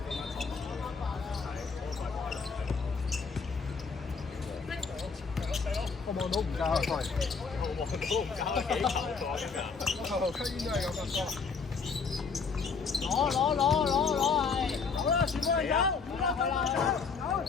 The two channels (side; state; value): right; quieter; 5.2 dB